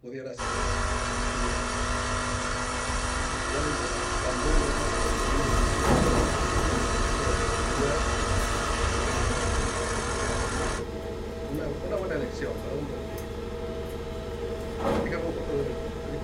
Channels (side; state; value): both; identical; correlation 1.00